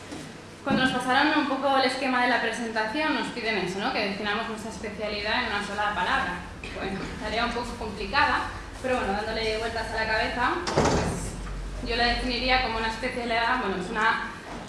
Cuando nos pasaron un poco el esquema de la presentación, nos piden eso, ¿no? Que definamos nuestra especialidad en una sola palabra. Bueno, tarea un poco complicada, pero bueno, dándole vueltas a la cabeza, pues yo la definiría como una especialidad, bueno, es una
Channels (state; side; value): identical; both; correlation 1.00